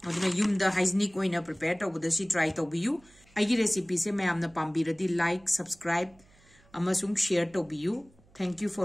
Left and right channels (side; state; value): right; noise; hum, 29 dB below the sound